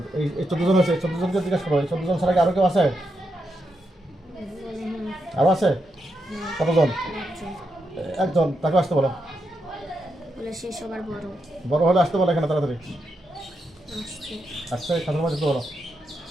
এই 14 জন আছে, 14 জনকে জিজ্ঞাসা করো। এই 14 জন ছাড়া কি আরো কেউ আছে? আরো আছে? কতজন? একজন, তাকে আসতে বলো। সে সবার বড়। বড় হলে আসতে বলো এখানে তাড়াতাড়ি। আসছে। আসছে, খাতার মধ্যে ঢুকতে বলো।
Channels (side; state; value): both; normal; correlation 0.84